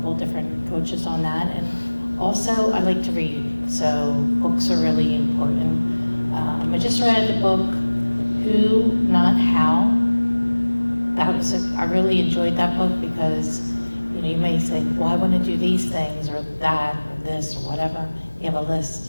of different coaches on that, and also I like to read, so books are really important. I just read the book, Who, Not How. I really enjoyed that book because you may say, well, I want to do these things or that or this or whatever. You have a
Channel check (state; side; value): inverted; both; correlation -1.00